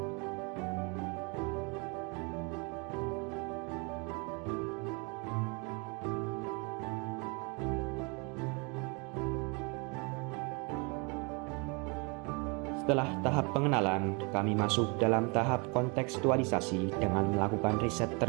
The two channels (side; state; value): left; quieter; 31.3 dB